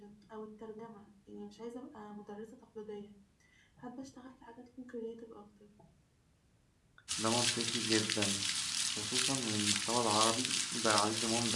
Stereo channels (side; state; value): both; identical; correlation 1.00